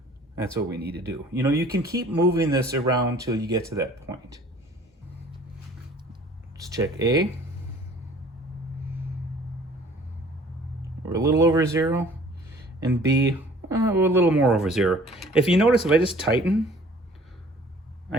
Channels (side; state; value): both; normal; correlation 0.52